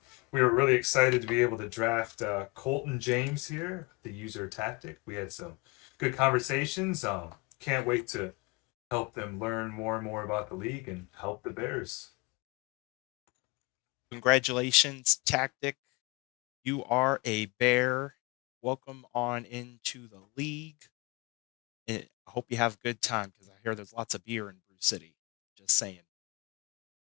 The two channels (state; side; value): quieter; right; 26.7 dB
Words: we were really excited to be able to draft Colton James here, the user tactic. We had some good conversations. Can't wait to help them learn more and more about the league and help the Bears. Congratulations, Tactic. You are a bear. Welcome on into the league. I hope you have a good time because I hear there's lots of beer in Brew City. Just saying.